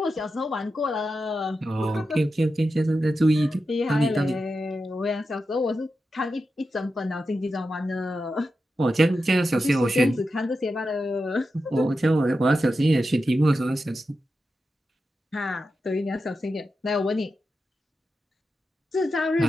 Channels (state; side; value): normal; both; correlation 0.90